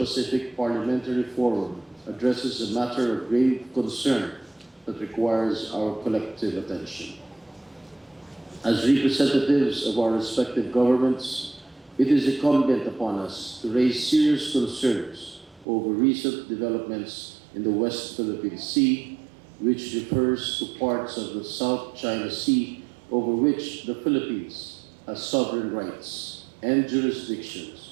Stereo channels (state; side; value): drops out; left; at 15.7 s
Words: Parliamentary Forum addresses a matter of grave concern that requires our collective attention. As representatives of our respective governments, it is incumbent upon us to raise serious concerns over recent developments in the West Philippine Sea, which refers to parts of the South China Sea over which the Philippines has sovereign rights and